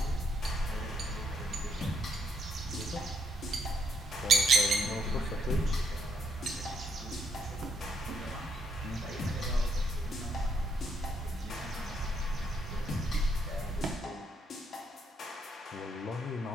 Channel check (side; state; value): both; normal; correlation 0.74